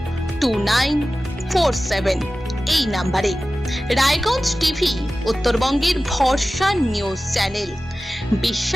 এই নাম্বারে। রায়গঞ্জ টিভি উত্তরবঙ্গের ভরসা নিউজ চ্যানেল,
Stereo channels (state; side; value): normal; both; correlation 0.96